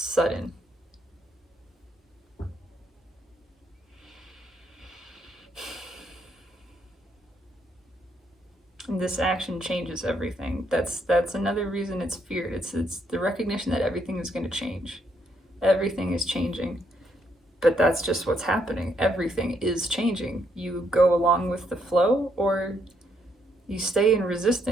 And this action changes everything. That's another reason it's feared. It's the recognition that everything is going to change. Everything is changing. But that's just what's happening. Everything is changing. You go along with the flow or you stay in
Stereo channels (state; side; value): normal; both; correlation 0.74